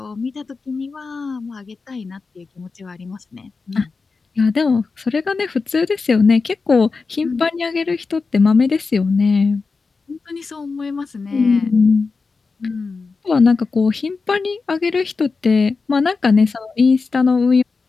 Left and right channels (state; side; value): quieter; right; 4.4 dB